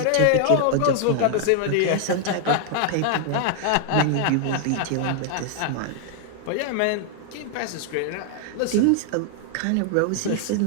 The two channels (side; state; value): both; different; correlation 0.00